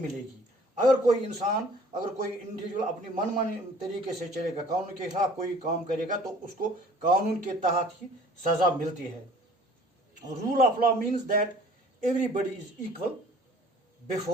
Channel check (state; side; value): normal; both; correlation 0.51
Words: अगर कोई इंडिविजुअल अपनी मनमानी तरीके से चलेगा, कानून के खिलाफ कोई काम करेगा, तो उसको कानून के तहत ही सज़ा मिलती है. Rule of law means that everybody is equal